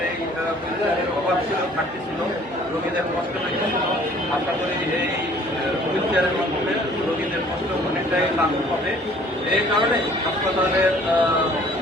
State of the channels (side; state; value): right; noise; hum, 26 dB below the sound